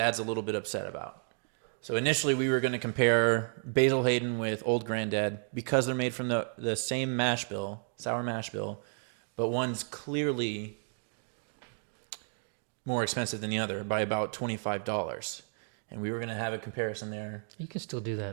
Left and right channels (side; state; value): left; silent; 56 dB below the other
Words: a little bit upset about. So initially, we were going to compare Basil Hayden with Old Granddad because they're made from the same mash bill, sour mash bill, but one's clearly more expensive than the other by about $25. And we were going to have a comparison there. You can still do